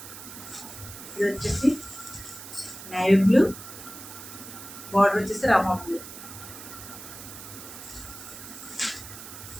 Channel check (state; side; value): noise; right; hiss, 13 dB below the sound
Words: ఇది వచ్చేసి నేవీ బ్లూ, బార్డర్ వచ్చేసి రామా బ్లూ.